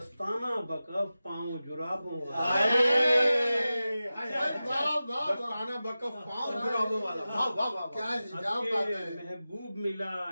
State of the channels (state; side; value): inverted; both; correlation -0.95